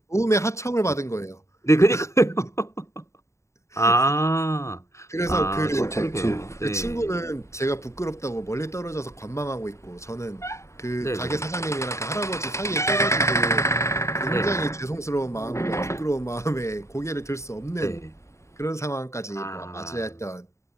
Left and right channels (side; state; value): right; late; 0.14 ms